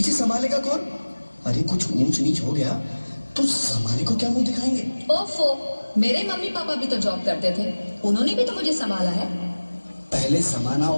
संभालेगा कौन? अरे कुछ ऊंच नीच हो गया तो संभाले को क्या मुंह दिखाएंगे? ओफो, मेरे मम्मी पापा भी तो जॉब करते थे, उन्होंने भी तो मुझे संभाला है। पहले समाना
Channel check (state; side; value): inverted; both; correlation -1.00